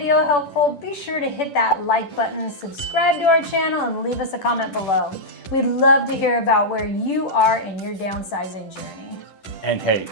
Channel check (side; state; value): right; late; 10 ms